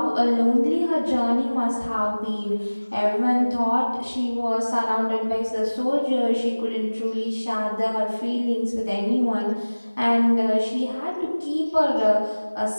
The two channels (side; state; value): both; inverted; correlation -1.00